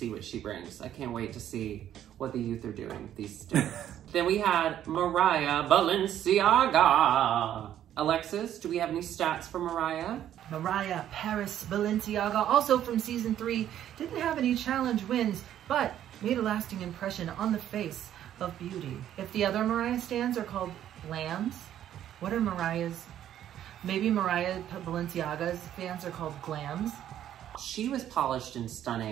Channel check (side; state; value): left; quieter; 11.1 dB